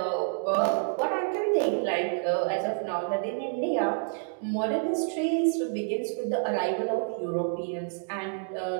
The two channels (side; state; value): left; silent; digital silence